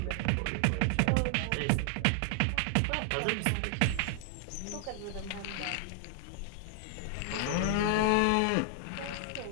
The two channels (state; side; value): different; both; correlation 0.00